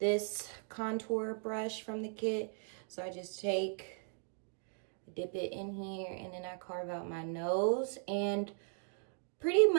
contour brush from the kit. So I just dip it in here, and then I carve out my nose, and pretty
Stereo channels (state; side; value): silent; left; 53 dB below the other